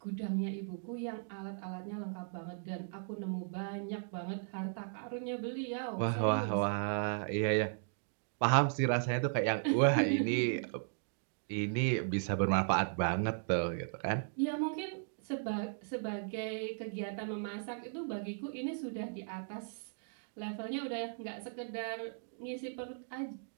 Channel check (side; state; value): left; silent; digital silence